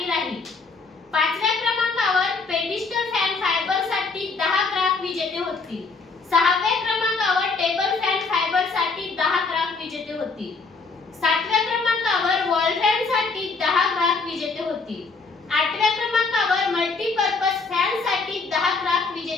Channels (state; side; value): quieter; right; 4.3 dB